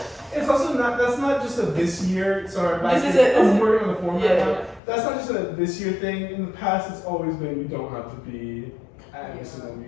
It's also not, that's not just a this year, sorry, back This is here, it. I'm working on the form right Yeah. now. That's not just a this year thing. In the past, it's always been you don't have to be at every single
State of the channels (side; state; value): right; drops out; at 4.8 s